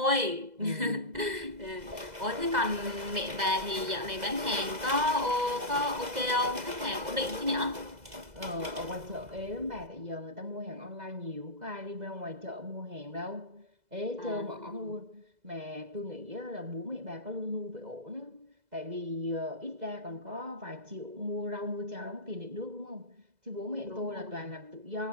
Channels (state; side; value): late; left; 2.0 ms